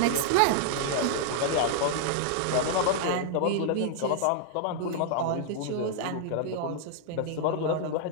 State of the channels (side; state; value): both; different; correlation -0.01